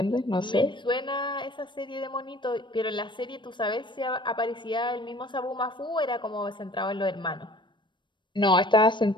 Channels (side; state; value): right; late; 0.23 ms